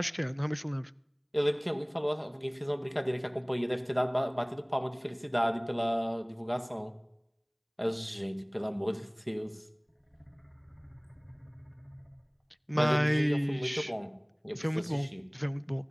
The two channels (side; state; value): both; identical; correlation 1.00